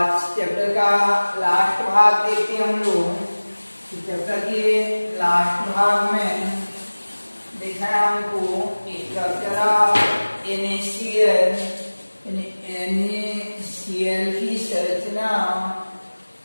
चैप्टर का लास्ट भाग देखते हैं हम लोग। चैप्टर के लास्ट भाग में देखना है हमको स्ट्रक्चर ऑफ NaCl की संरचना,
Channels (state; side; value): inverted; both; correlation -1.00